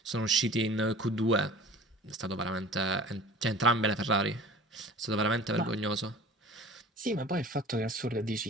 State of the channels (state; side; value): normal; both; correlation 0.43